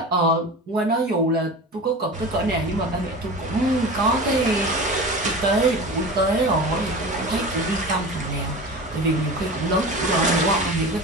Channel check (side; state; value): both; normal; correlation 0.32